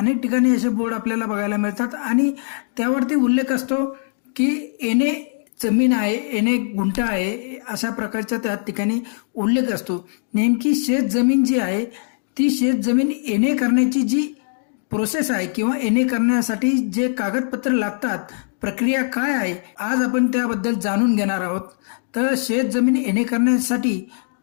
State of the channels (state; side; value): silent; right; digital silence